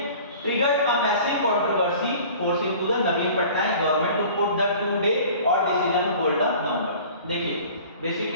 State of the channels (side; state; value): both; inverted; correlation -0.45